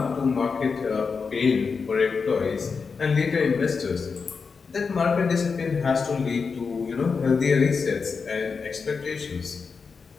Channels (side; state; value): right; quieter; 5.2 dB